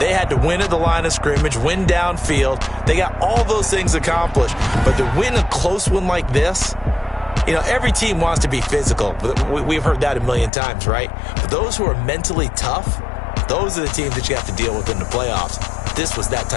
had to win at the line of scrimmage, win downfield. They got all those things accomplished. But to win a close one like this, you know, every team wants to be physical. We've heard that a million times, right? But those who are mentally tough, those are the teams that you have to deal with in the playoffs. This was that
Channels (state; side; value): drops out; right; at 10.5 s